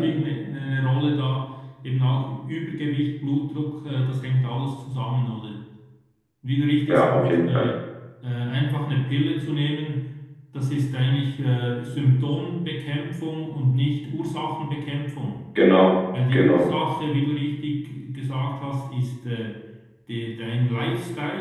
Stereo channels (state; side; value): identical; both; correlation 1.00